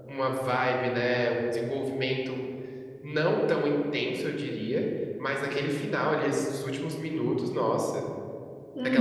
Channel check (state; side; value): identical; both; correlation 1.00